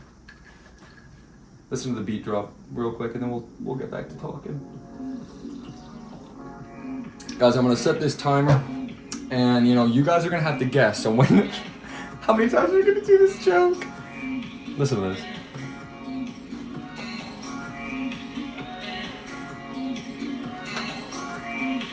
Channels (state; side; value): identical; both; correlation 1.00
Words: Listen to the beat drop real quick, and then we'll get back to talking. Guys, I'm gonna set this timer, and you guys are gonna have to guess. So when, how many times are we gonna do this joke? Listen to this.